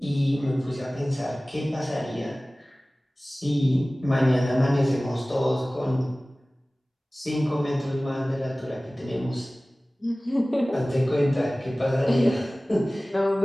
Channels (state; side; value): normal; both; correlation 0.98